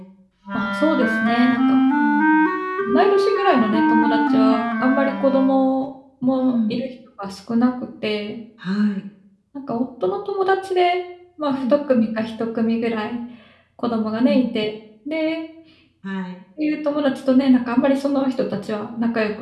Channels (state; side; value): identical; both; correlation 1.00